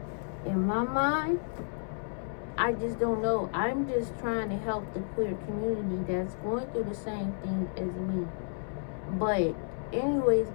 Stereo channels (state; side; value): silent; right; 57 dB below the other